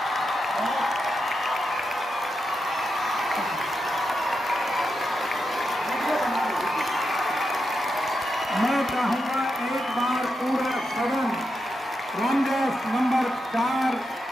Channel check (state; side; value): normal; both; correlation 0.86